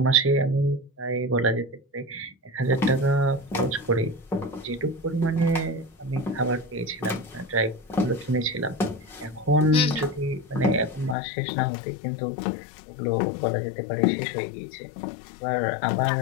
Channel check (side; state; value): right; drops out; at 11.2 s